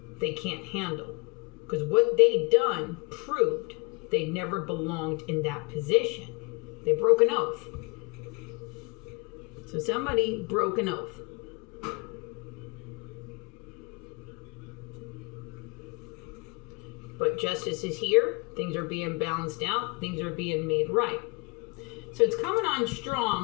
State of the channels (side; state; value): right; quieter; 30.6 dB